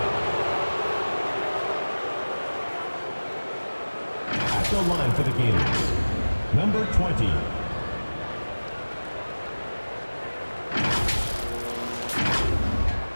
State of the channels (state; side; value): inverted; both; correlation -1.00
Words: At the line for the Gators, number 20.